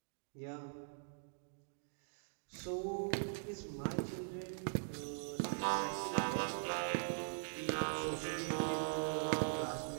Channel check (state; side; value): silent; left; digital silence